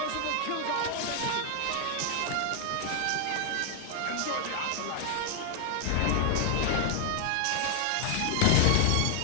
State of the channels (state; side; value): different; both; correlation 0.00